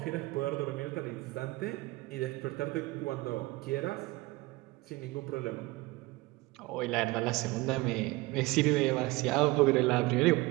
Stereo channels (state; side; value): quieter; left; 21.6 dB